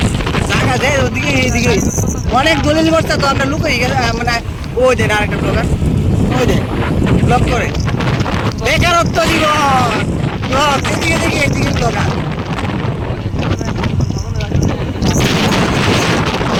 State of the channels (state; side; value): identical; both; correlation 1.00